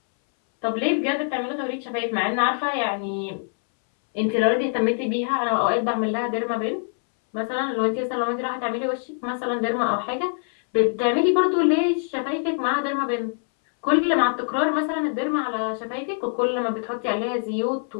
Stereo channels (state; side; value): silent; right; 63 dB below the other